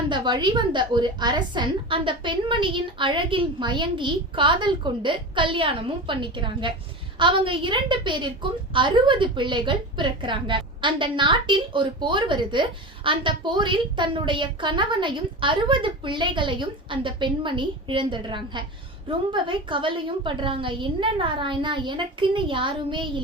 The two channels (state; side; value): normal; both; correlation 0.27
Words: வழிவந்த ஒரு அரசன் அந்த பெண்மணியின் அழகில் மயங்கி காதல் கொண்டு கல்யாணமும் பண்ணிக்கிறாங்க. அவங்க 2 பேருக்கும் 60 பிள்ளைகள் பிறக்கிறாங்க. அந்த நாட்டில் ஒரு போர் வருது. அந்த போரில் தன்னுடைய கணவனையும் 60 பிள்ளைகளையும் அந்த பெண்மணி இழந்துடுறாங்க. ரொம்பவே கவலையும் படுறாங்க. என்ன நாராயணா, எனக்குன்னு யாருமே